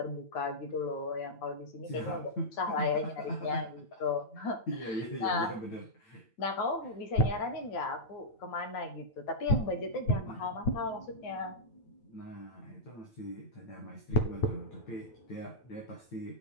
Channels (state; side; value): late; right; 8.9 ms